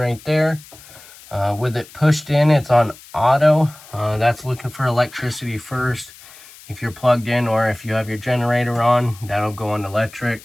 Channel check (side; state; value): left; noise; hiss, 21 dB below the sound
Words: there. With it pushed in, it's on auto. That's looking for electricity first. If you're plugged in, or if you have your generator on, that'll go on